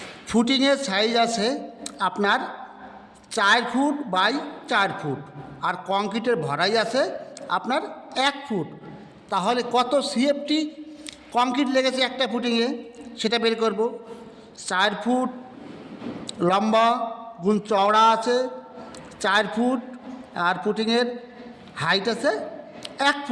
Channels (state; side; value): identical; both; correlation 1.00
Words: ফুটিংয়ের সাইজ আছে আপনার 4 ফুট বাই 4 ফুট, আর কংক্রিটের ভরাই আছে আপনার 1 ফুট। তাহলে কত সিএফটি কংক্রিট লেগেছে একটা ফুটিংয়ে সেটা বের করব। 4 ফুট লম্বা গুণ চওড়া আছে 4 ফুট, আর ফুটিংয়ের হাইট আছে 1